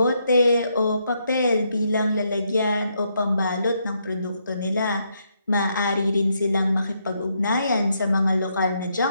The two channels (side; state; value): both; inverted; correlation -0.77